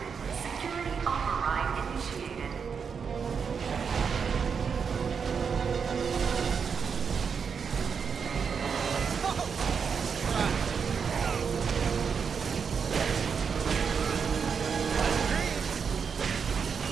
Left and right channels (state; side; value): quieter; left; 6.3 dB